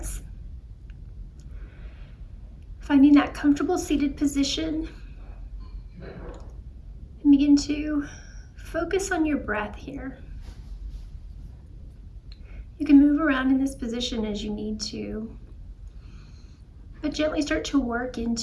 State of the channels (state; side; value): identical; both; correlation 1.00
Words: Finding that comfortable seated position. And begin to focus on your breath here. You can move around in this position as you need to, but gently start to work